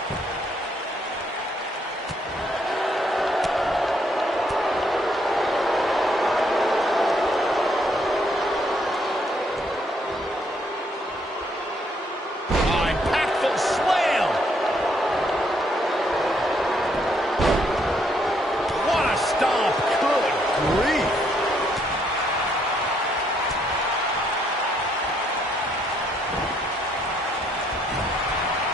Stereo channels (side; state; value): both; normal; correlation 0.71